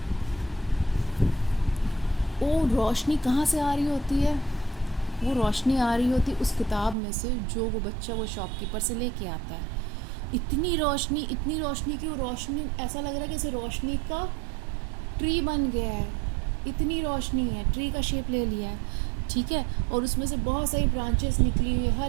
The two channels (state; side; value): drops out; left; at 7.0 s